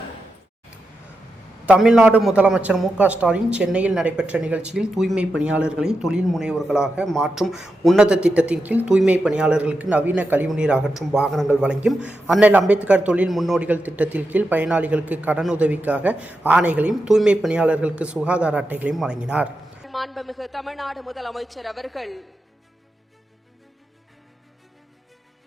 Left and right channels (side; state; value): both; normal; correlation 0.88